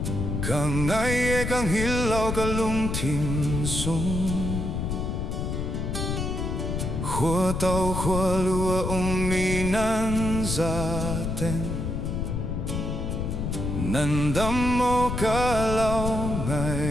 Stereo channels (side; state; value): left; noise; rumble, 2 dB below the sound